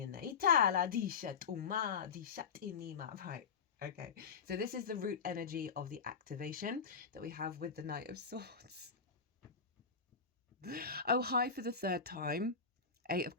there. Right. Okay. So this is the root energy of the activation that we have with the Knight of Swords. Oh, hi for the third time. 8 of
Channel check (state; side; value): quieter; right; 5.7 dB